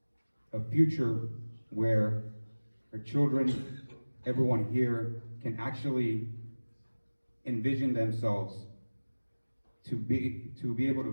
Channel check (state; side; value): inverted; both; correlation -1.00